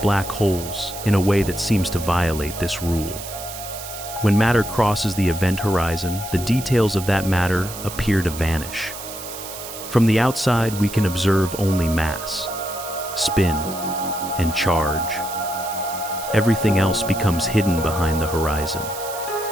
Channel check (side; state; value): right; noise; hiss, 11 dB below the sound